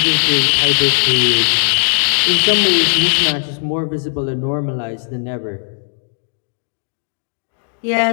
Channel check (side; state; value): right; silent; digital silence